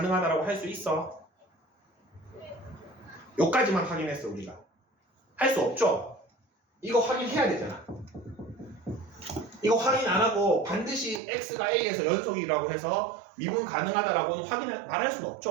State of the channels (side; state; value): left; drops out; at 11.2 s